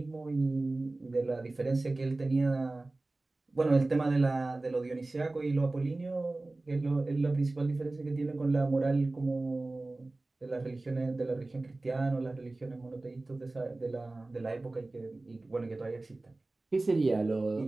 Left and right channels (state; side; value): quieter; left; 3.0 dB